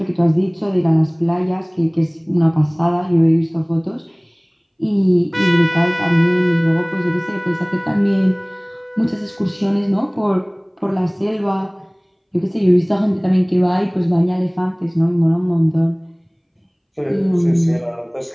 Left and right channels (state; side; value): identical; both; correlation 1.00